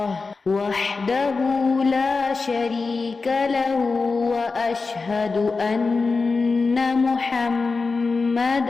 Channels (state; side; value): quieter; right; 4.2 dB